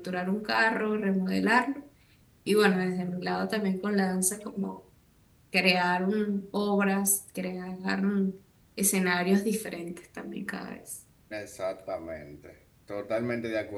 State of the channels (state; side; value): identical; both; correlation 1.00